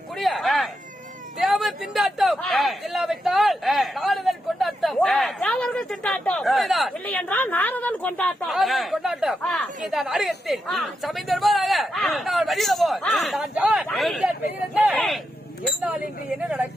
தேவ திண்டாட்டம் இல்லாவிட்டால் நாரதன் கொண்டாட்டம். தேவர்கள் திண்டாட்டம் இல்லை என்றால் நாரதன் கொண்டாட்டம். கொண்டாட்டம் இதான் அறியத்தில் சமைந்தர்பாக நான் வழியில போய் என்னால் இன்று என்ன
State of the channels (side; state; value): both; normal; correlation 0.85